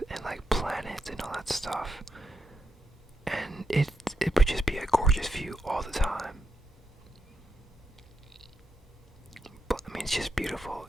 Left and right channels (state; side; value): normal; both; correlation 0.84